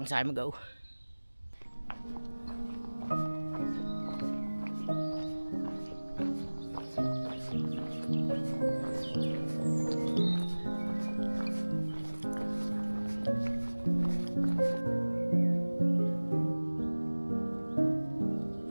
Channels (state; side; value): inverted; both; correlation -1.00